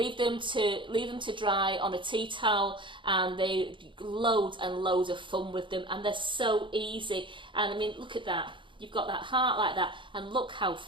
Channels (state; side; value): late; left; 0.24 ms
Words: them to dry on a tea towel, and they loads and loads of fun with them, and they're so easy. And I mean, look at that. You've got that heart like that, and look how